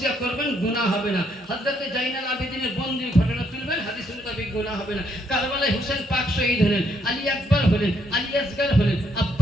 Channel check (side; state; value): both; normal; correlation 0.72